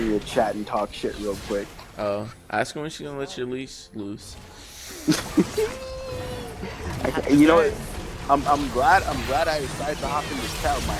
your chat and talk shit real quick. Oh, ask her when she's gonna let your leash loose. You know what? I'm glad I decided to hop in this chat with my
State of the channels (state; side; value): identical; both; correlation 1.00